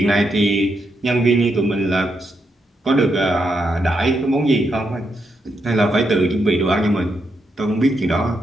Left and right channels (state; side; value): normal; both; correlation 0.81